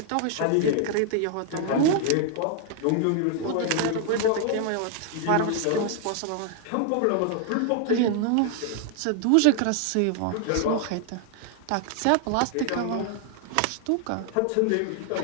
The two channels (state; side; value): different; both; correlation 0.00